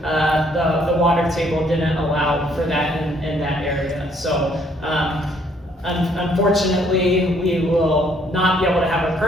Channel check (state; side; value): normal; both; correlation 0.66